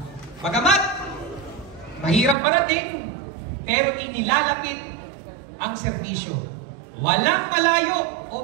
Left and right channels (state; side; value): drops out; left; at 2.4 s